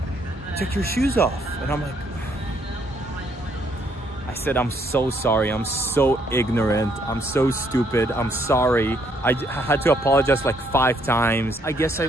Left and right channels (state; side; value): normal; both; correlation 0.70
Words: take your shoes off. And I'm like, I said, I'm so sorry, I'm so ignorant, I'm so stupid, I'm sorry. I had to apologize like 5 times. I guess